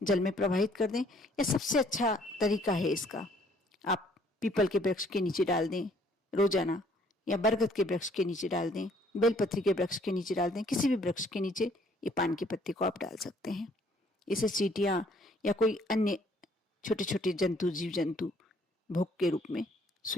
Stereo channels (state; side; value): normal; both; correlation 0.62